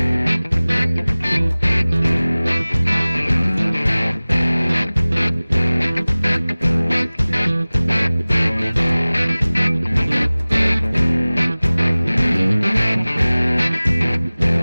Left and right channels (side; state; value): both; inverted; correlation -0.99